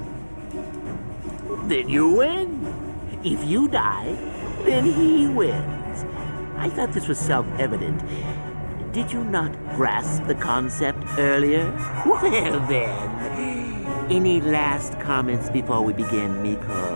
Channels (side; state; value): both; inverted; correlation -1.00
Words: Then you win. If you die, then he wins. I thought this was self-evident. Did you not grasp the concept earlier? Well then, any last comments before we begin,